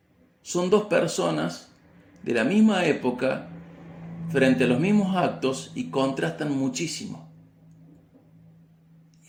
Son dos personas de la misma época frente a los mismos actos y contrastan muchísimo.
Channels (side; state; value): both; identical; correlation 1.00